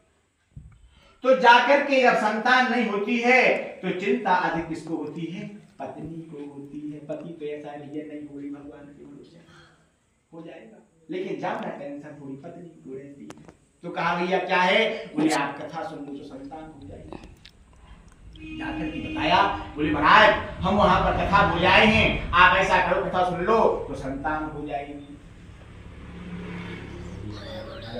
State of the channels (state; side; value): identical; both; correlation 1.00